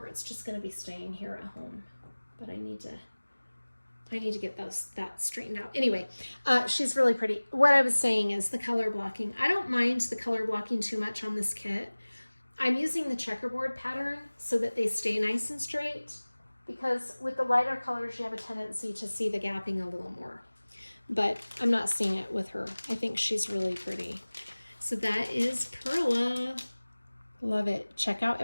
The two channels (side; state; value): both; inverted; correlation -1.00